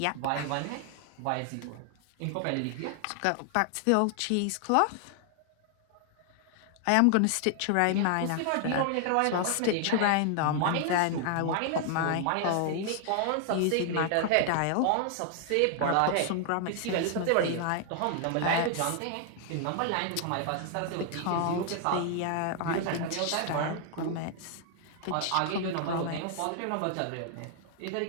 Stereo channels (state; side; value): different; both; correlation 0.00